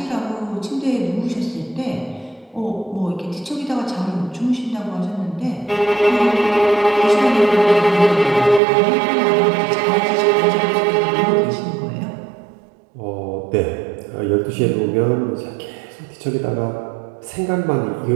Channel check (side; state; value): left; drops out; at 8.6 s